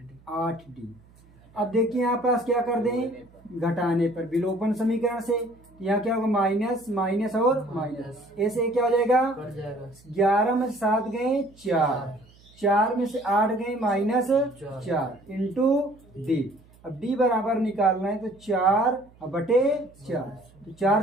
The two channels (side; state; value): right; noise; hum, 27 dB below the sound